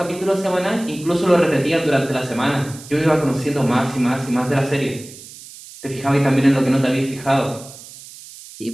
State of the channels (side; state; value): right; noise; hiss, 17 dB below the sound